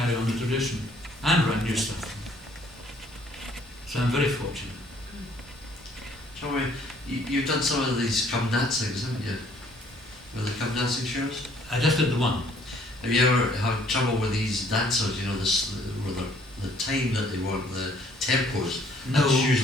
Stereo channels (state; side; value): normal; both; correlation 0.61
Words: on the tradition and write new stuff. So I'm very fortunate. Joey, you've done some of these come dancings, haven't you? With the come dancing shows? I just did the one. Have you ever had trouble with these dancers, you know, with the time that they want, the tempos? No. That's